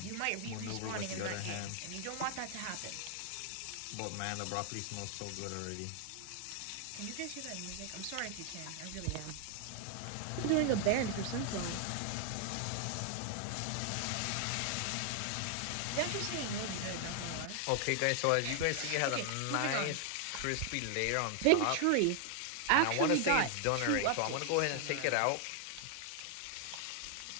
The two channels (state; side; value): different; both; correlation 0.00